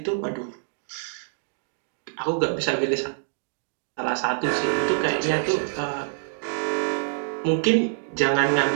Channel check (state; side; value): silent; left; digital silence